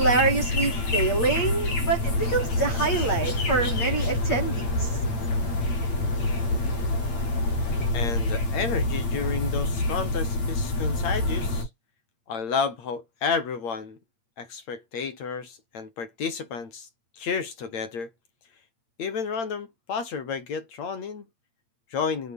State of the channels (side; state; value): right; late; 8.7 ms